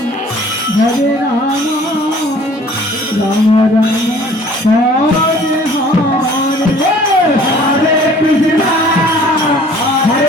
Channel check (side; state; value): both; normal; correlation 0.52